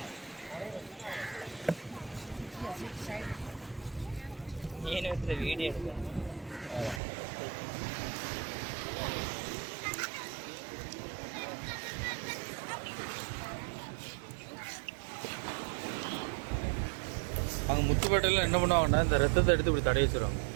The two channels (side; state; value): left; drops out; at 7.0 s